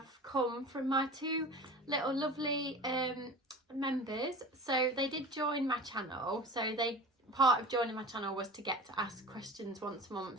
come from my two little lovely members. So they did join my channel, so part of joining my channel was to get to ask questions once a month.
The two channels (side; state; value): both; normal; correlation 0.36